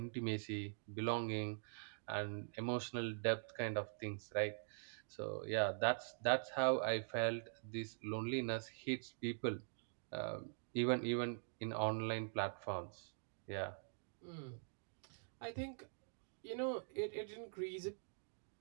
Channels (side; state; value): left; silent; digital silence